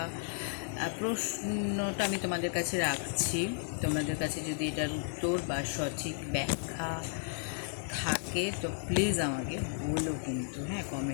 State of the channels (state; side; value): silent; right; 55 dB below the other